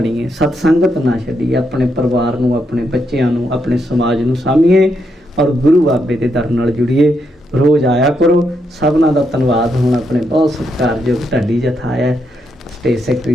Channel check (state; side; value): normal; both; correlation 0.80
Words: ਸਤਸੰਗਤ ਨਾ ਛੱਡੀਏ, ਆਪਣੇ ਪਰਿਵਾਰ ਨੂੰ, ਆਪਣੇ ਬੱਚਿਆਂ ਨੂੰ, ਆਪਣੇ ਸਮਾਜ ਨੂੰ ਸਾਂਭੀਏ ਔਰ ਗੁਰੂ ਬਾਬੇ ਦੇ ਦਰ ਨਾਲ ਜੁੜੀਏ। ਰੋਜ਼ ਆਇਆ ਕਰੋ। ਸਭਨਾਂ ਦਾ ਧੰਨਵਾਦ। ਹੁਣ ਆਪਣੇ ਬਹੁਤ ਸਤਿਕਾਰਯੋਗ ਢਾਡੀ ਜਥਾ ਆਇਆ, ਸਟੇਜ ਸੈਕਟਰੀ